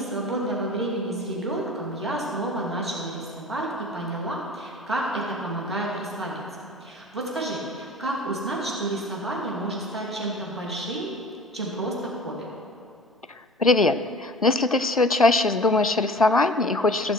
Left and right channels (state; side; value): normal; both; correlation 0.41